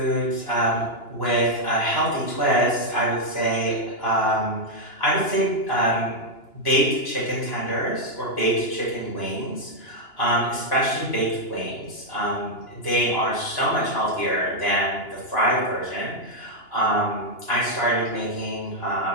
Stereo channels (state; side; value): late; right; 2.9 ms